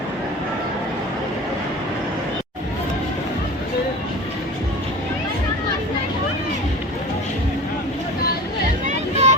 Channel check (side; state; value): both; normal; correlation 0.35